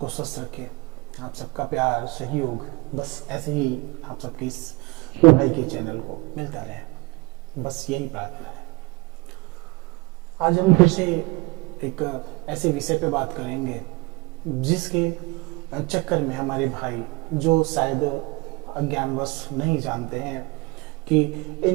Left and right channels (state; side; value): quieter; left; 24.8 dB